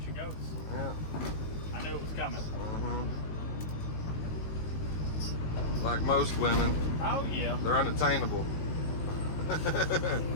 she goes. Yeah. I knew it was coming. Like most women, Oh yeah. they're unattainable.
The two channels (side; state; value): right; late; 19 ms